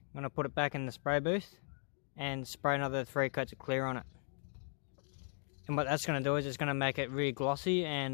going to put it back in the spray booth and spray another 3 coats of clear on it. And what that's going to do is it's going to make it really glossy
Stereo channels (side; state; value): right; silent; 53 dB below the other